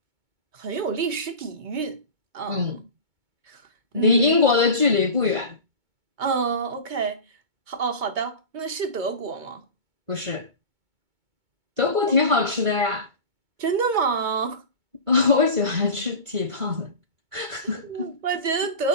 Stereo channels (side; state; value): left; late; 2.2 ms